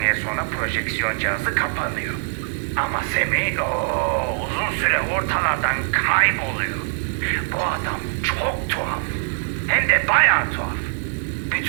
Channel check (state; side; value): silent; left; digital silence